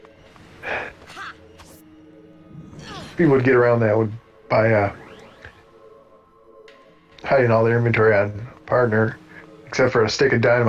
People would get around that would by hiding all their inventory on partner, except for a stick of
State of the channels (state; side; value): identical; both; correlation 1.00